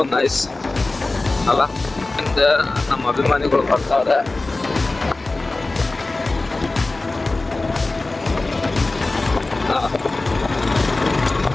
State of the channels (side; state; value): right; quieter; 3.2 dB